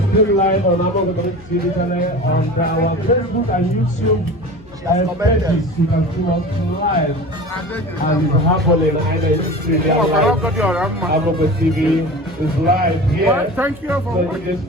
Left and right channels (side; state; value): left; noise; hum, 25 dB below the sound